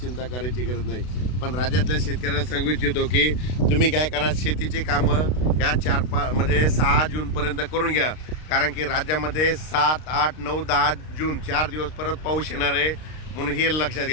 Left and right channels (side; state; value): right; late; 32 ms